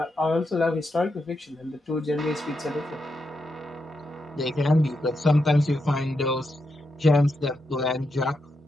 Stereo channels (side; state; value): both; normal; correlation 0.84